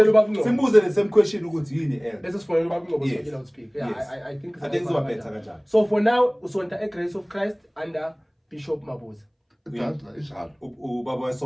ubabunqobo. Simbuze the same question ukuthi yini elder. Bese sifonele ubabunqobo so Yes. you speak. Yeah, Yes. I think izoba better kanjalo. So for now usonta eGrace of Christ under Bishop Mabuza. Dadla ishalo. Ubaba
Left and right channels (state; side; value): identical; both; correlation 1.00